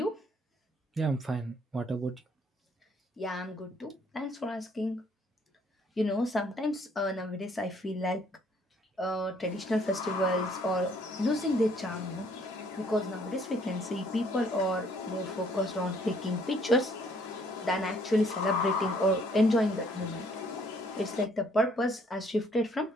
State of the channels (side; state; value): both; normal; correlation 0.63